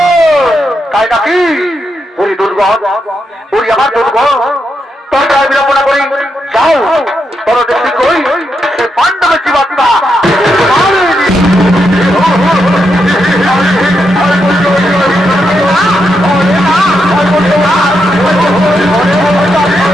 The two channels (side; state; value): both; normal; correlation 0.83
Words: তাই নাকি ওরি দুর্গম ওরি আমার দুর্গম তোমরা বিড়ম্বনা করি যাও তোর দেশে কই সে পাণ্ডবের জীবাত্মা